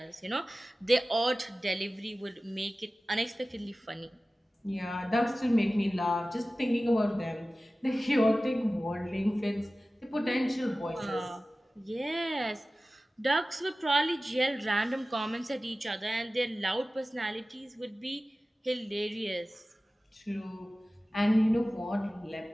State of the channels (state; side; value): normal; both; correlation 0.96